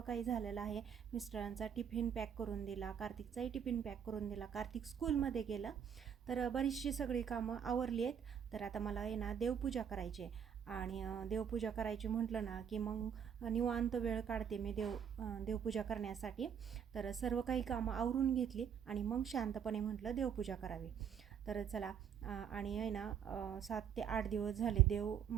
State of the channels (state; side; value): quieter; left; 8.0 dB